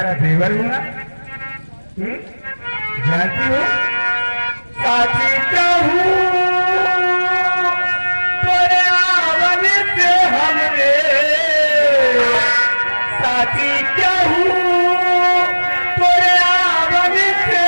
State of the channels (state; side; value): inverted; both; correlation -1.00